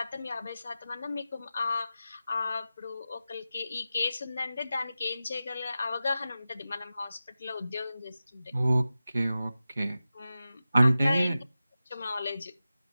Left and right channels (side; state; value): both; inverted; correlation -0.94